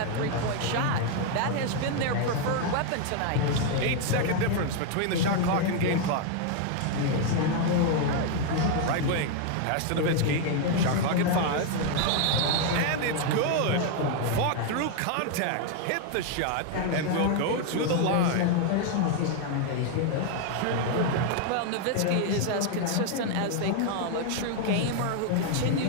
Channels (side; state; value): both; different; correlation 0.00